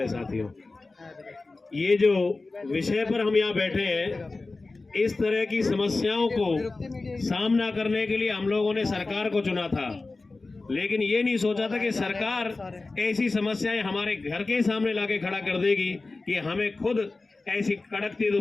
साथियों, ये जो विषय पर हम यहाँ बैठे हैं, इस तरह की समस्याओं को सामना करने के लिए हम लोगों ने सरकार को चुना था, लेकिन ये नहीं सोचा था कि सरकार ऐसी समस्याएं हमारे घर के सामने लाके खड़ा कर देगी कि हमें खुद ऐसी कड़कती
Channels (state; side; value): quieter; right; 3.5 dB